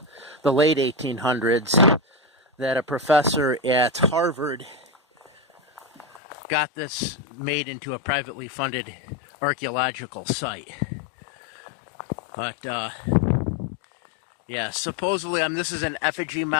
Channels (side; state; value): right; drops out; at 6.2 s